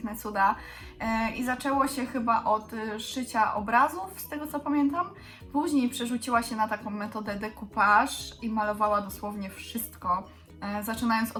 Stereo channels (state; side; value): identical; both; correlation 1.00